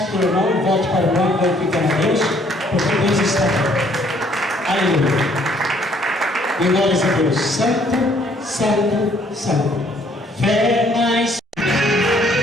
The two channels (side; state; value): both; normal; correlation 0.63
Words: o irmão, volte para o irmão, glorificando a Deus, porque Deus está aqui. Aleluia. E glórias a Deus. Santo, santo, santo. Fé mais.